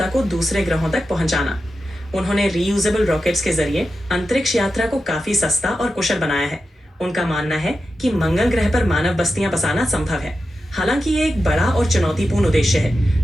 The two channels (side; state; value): both; normal; correlation 0.90